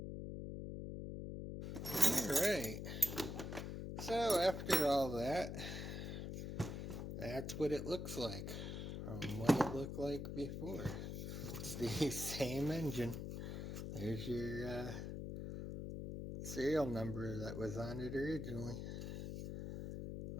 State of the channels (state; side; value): noise; left; hum, 5 dB below the sound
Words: Alright, so after all that, that's what it looks like from what it looked like before. It's the same engine. There's your serial number that was on it originally.